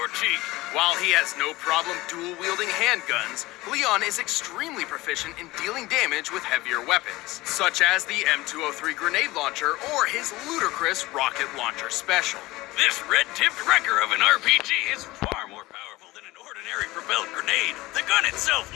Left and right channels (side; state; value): right; quieter; 19.5 dB